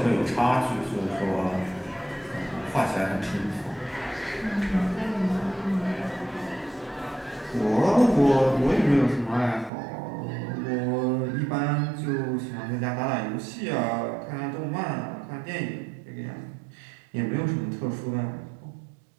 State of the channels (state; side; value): drops out; left; at 9.7 s